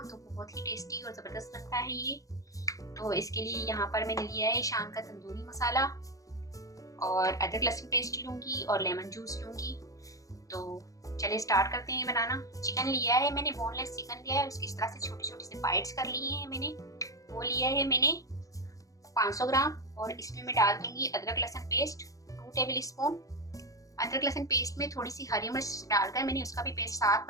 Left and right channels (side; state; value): right; late; 0.16 ms